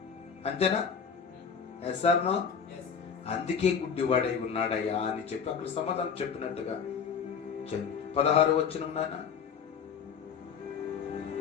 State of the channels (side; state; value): right; quieter; 6.6 dB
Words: అంతేనా? Yes or no? అందుకే గుడ్డివాడై ఉన్నాడయ్యా అని చెప్పి అక్కడ సమాధానం చెప్పినట్టుగా 16 వచనం నాయన.